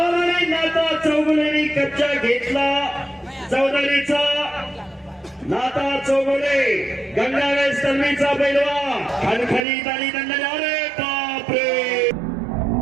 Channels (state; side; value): drops out; left; at 9.7 s